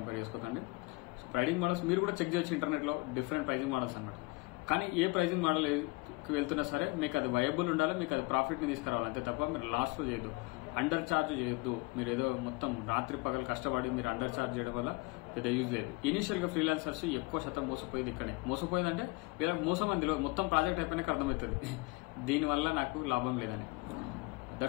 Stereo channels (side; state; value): right; quieter; 25.6 dB